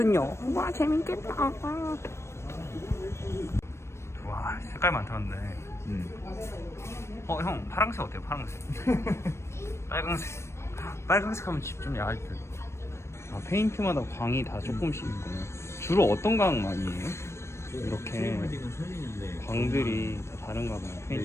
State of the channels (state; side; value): late; right; 0.13 ms